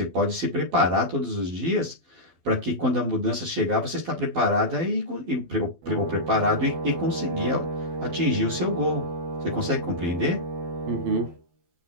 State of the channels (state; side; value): late; left; 12 ms